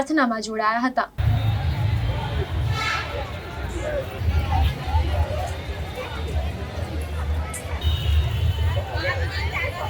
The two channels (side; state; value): both; identical; correlation 1.00